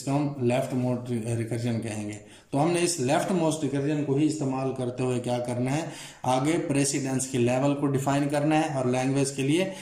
हम लेफ्ट मोस्ट रिकर्जन कहेंगे। तो हमने इस लेफ्ट मोस्ट रिकर्जन को ही इस्तेमाल करते हुए क्या करना है, आगे प्रेसिडेंस के लेवल को डिफाइन करना है और लैंग्वेज के लिए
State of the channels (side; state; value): both; identical; correlation 1.00